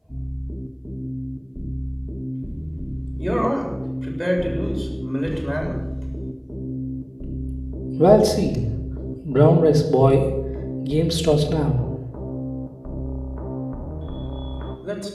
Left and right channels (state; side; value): identical; both; correlation 1.00